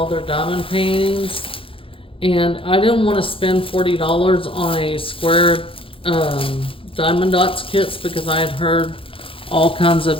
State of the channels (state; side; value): late; right; 0.26 ms